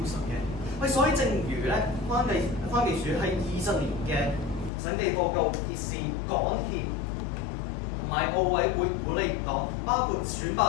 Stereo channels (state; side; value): drops out; right; at 4.7 s